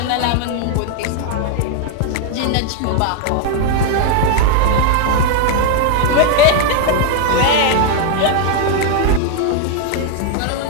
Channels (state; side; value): different; both; correlation 0.00